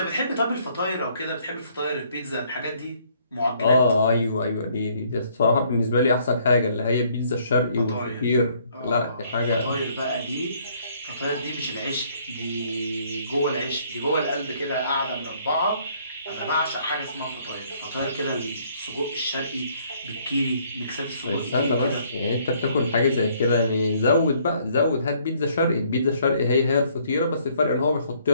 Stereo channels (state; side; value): inverted; both; correlation -0.64